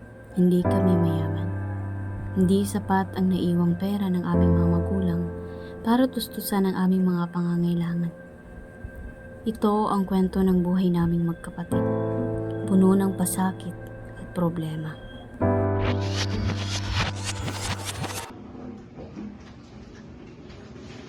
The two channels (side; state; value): both; identical; correlation 1.00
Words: Hindi kami mayaman. Hindi sapat ang naiwang pera ng aming mga magulang para tustusan ang aming mga pangangailangan. Ito ang kwento ng buhay naming magkapatid. Puno ng pasakit at problema.